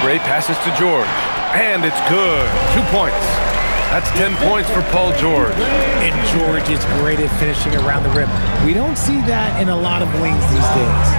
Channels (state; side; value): inverted; both; correlation -1.00